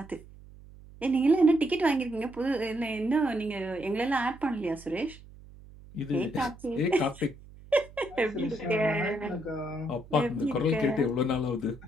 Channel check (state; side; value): noise; right; hum, 20 dB below the sound